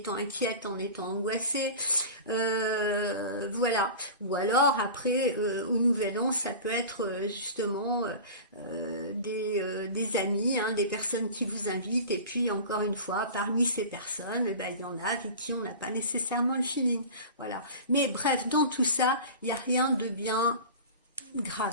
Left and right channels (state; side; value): inverted; both; correlation -0.34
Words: inquiète, en étant angoissée. Voilà. Ou alors après, au Nouvel An, ça peut être justement des amis, hein, des personnes qui vous invitent. Et puis encore une fois, parmi ces personnes, eh ben, il y en a avec qui on n'a pas nécessairement le feeling. Voilà. Mais bref, dans tout ça, il n'y a rien de bien